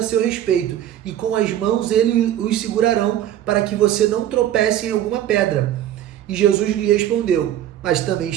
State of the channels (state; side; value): quieter; left; 11.6 dB